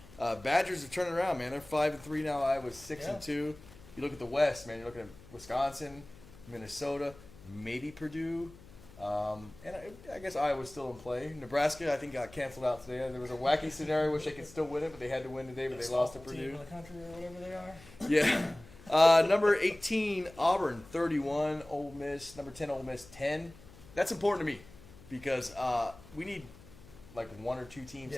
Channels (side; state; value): left; noise; hum, 21 dB below the sound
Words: Badgers are turning around, man. They're 5-3 now. Iowa's 6-2. You look at the West, man. You're looking at Wisconsin, Minnesota, maybe Purdue. And I guess Iowa's still in play. Nebraska, I think, got canceled out today. There was a wacky scenario which they could still win it, but they had to win today, but they lost to Purdue. Team in the country or whatever they are. Yeah. Number 18, Auburn, 31. Ole Miss, number 10, Ole Miss, 10. That's important to me because we need like 1 or 2 teams